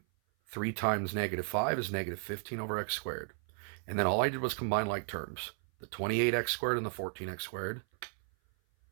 3 times negative 5 is negative 15 over x squared. And then all I did was combine like terms. The 28x squared and the 14x squared.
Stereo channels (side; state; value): left; silent; 55 dB below the other